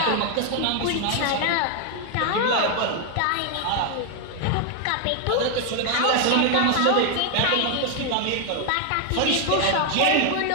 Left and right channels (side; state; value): both; different; correlation 0.00